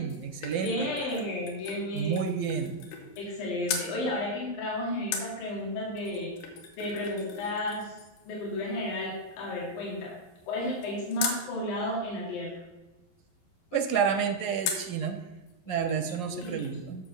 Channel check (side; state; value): right; late; 11 ms